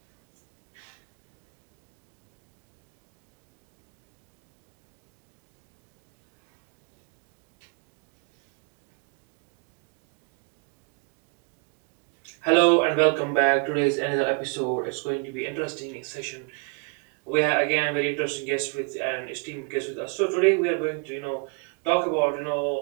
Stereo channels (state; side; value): quieter; left; 34.4 dB